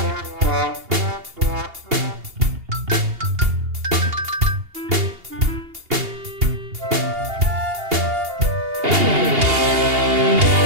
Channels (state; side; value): late; left; 2.8 ms